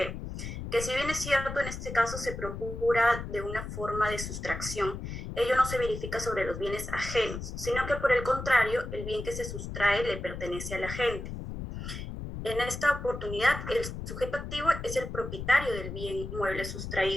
si bien es cierto, en este caso se procura de una forma de sustracción, ello no se verifica sobre los bienes ajenos, sino que por el contrario, el bien que se sustrae le pertenece al agente. En esta oportunidad, el sujeto activo es el propietario del bien mueble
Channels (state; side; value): noise; left; rumble, 7 dB below the sound